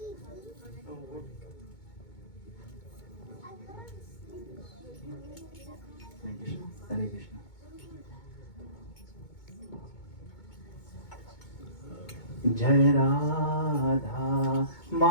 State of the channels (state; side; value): late; right; 2.2 ms